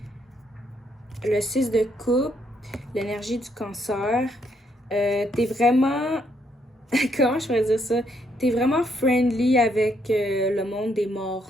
Le 6 de coupe, l'énergie du cancer. T'es vraiment... Comment je pourrais dire ça? T'es vraiment friendly avec le monde des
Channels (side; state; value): both; normal; correlation 0.73